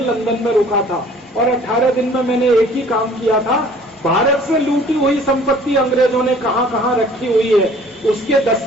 लंदन में रुका था और 18 दिन में मैंने एक ही काम किया था, भारत से लूटी हुई संपत्ति अंग्रेजों ने कहां कहां रखी हुई है उसके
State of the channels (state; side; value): normal; both; correlation 0.53